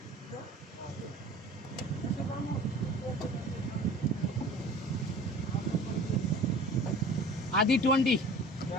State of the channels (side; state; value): both; normal; correlation 0.43